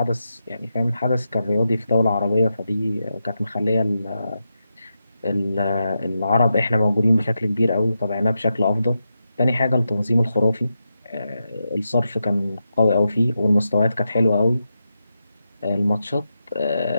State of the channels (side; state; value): both; inverted; correlation -0.87